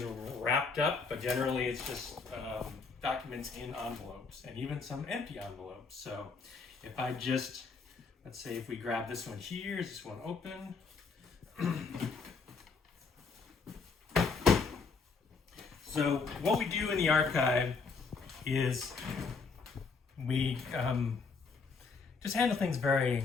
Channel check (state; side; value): quieter; right; 4.8 dB